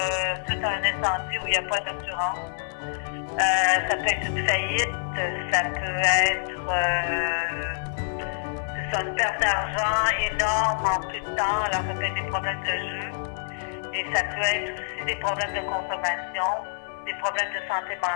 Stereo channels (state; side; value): silent; right; 56 dB below the other